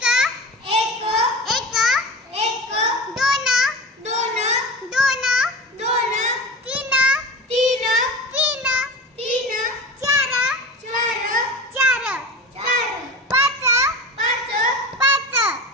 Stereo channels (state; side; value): normal; both; correlation 0.31